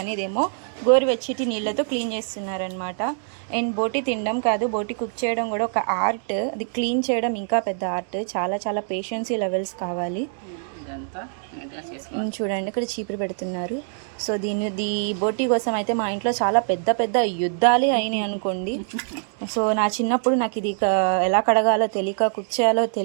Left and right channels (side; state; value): left; silent; digital silence